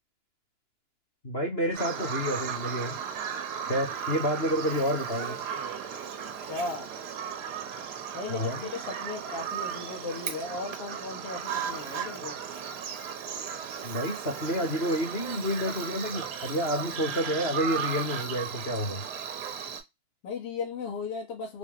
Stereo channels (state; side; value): late; right; 2.9 ms